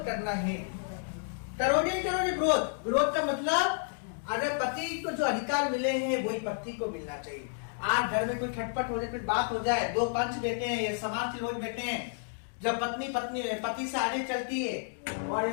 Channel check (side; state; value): right; silent; digital silence